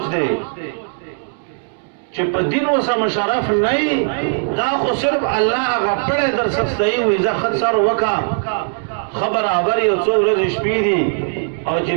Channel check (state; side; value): silent; left; digital silence